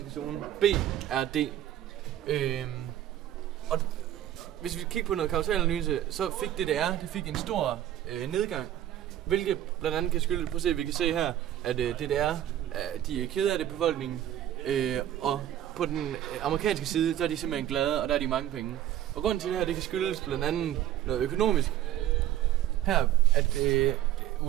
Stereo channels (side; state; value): left; quieter; 12.1 dB